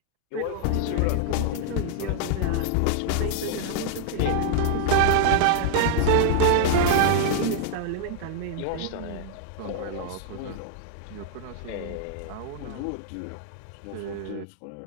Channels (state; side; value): different; both; correlation -0.01